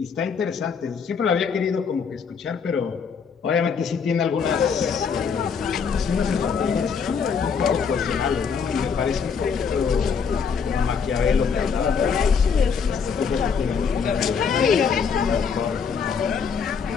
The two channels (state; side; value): quieter; right; 6.2 dB